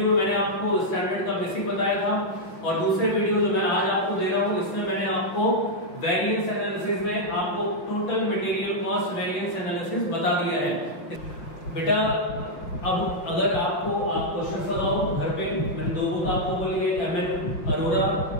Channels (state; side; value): late; right; 5.4 ms